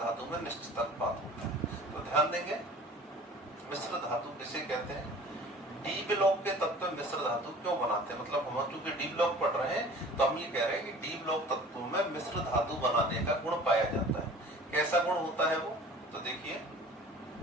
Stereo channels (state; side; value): normal; both; correlation 0.45